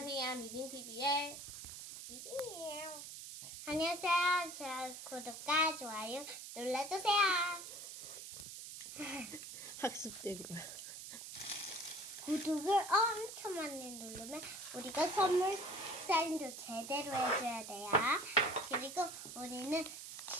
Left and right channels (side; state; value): right; noise; hiss, 10 dB below the sound